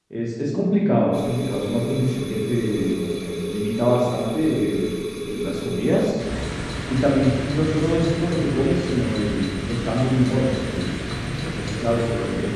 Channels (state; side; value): identical; both; correlation 1.00